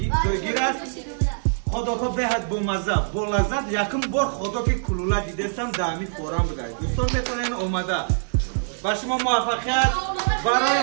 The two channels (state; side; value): silent; left; 63 dB below the other